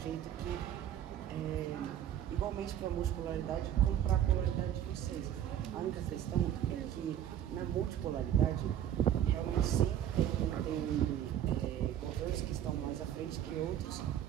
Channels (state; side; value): quieter; left; 10.7 dB